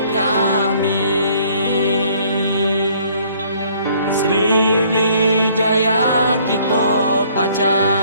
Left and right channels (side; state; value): both; inverted; correlation -0.61